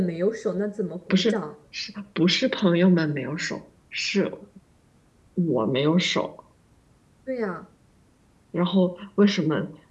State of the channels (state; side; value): identical; both; correlation 1.00